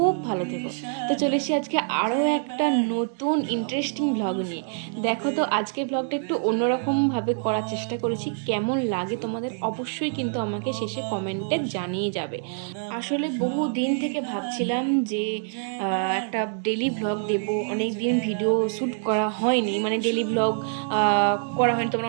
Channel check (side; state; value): left; silent; digital silence